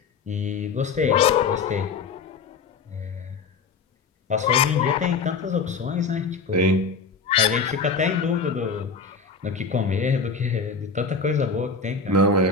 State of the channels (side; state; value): right; quieter; 4.8 dB